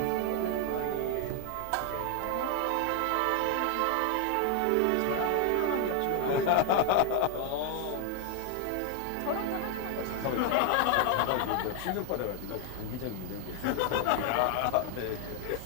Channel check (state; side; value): different; both; correlation 0.00